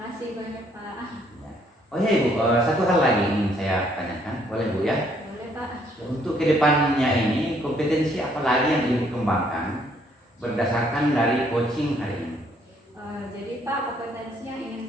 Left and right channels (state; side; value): normal; both; correlation 0.67